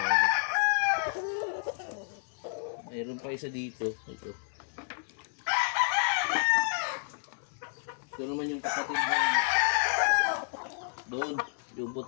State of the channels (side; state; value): right; silent; digital silence